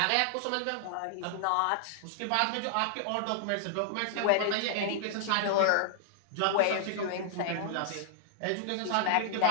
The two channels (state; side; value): different; both; correlation -0.01